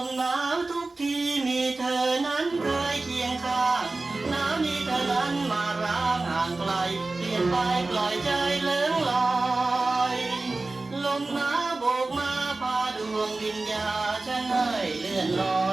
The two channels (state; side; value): quieter; left; 3.3 dB